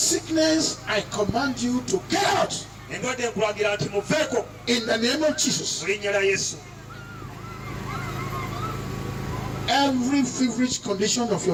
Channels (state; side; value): identical; both; correlation 1.00